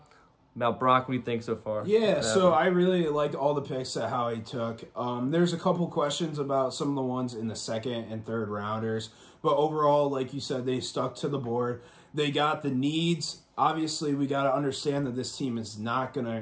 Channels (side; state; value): both; identical; correlation 1.00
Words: About Brock, what do you think so far? Yeah, so I really liked all the picks that Howie took. There's a couple questions about some of the ones in the second and third rounders. But overall, like you said, they stuck to the board. They got the needs. Obviously, we got to understand that this team is not going